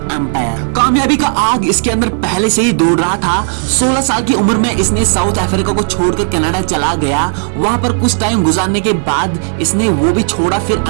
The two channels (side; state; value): left; silent; 62 dB below the other